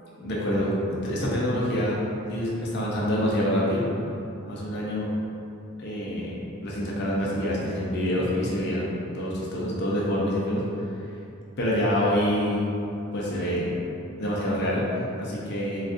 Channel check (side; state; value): both; normal; correlation 0.45